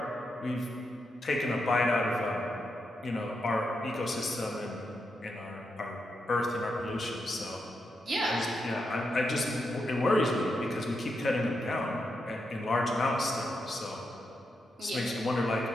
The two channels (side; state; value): both; normal; correlation 0.84